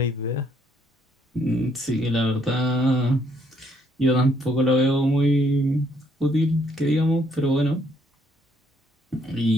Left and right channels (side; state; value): both; normal; correlation 0.68